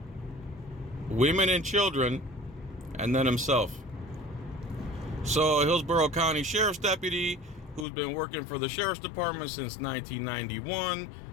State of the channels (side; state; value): right; drops out; at 7.9 s